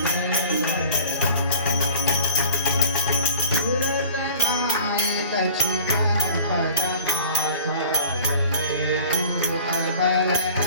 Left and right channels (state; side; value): inverted; both; correlation -0.44